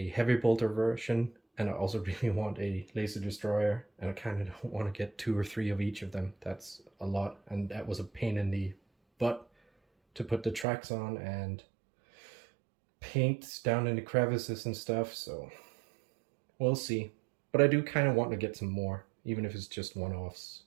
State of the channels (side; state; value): left; drops out; at 10.7 s